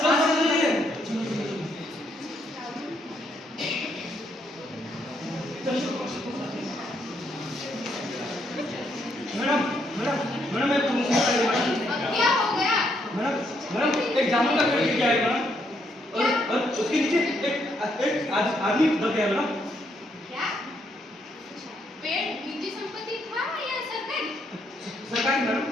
चलिए। मैडम, मैडम, मैडम एक अब क्या हो गया? मैडम, मैडम एक जामुन का पेड़ गिर गया है मैडम, और उसके नीचे एक आदमी दब गया है मैडम। क्या? पेड़ निजी संपत्ति था या सरकारी? सरकारी मैडम।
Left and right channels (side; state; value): both; normal; correlation 0.74